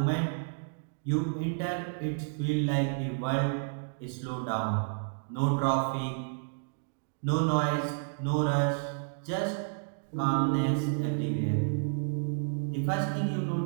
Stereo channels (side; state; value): left; silent; digital silence